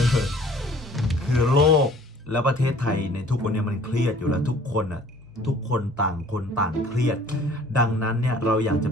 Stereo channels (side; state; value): both; normal; correlation 0.53